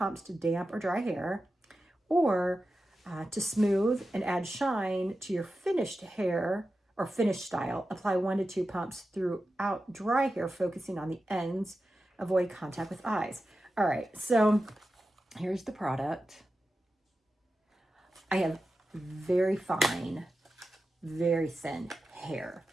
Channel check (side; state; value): both; normal; correlation 0.92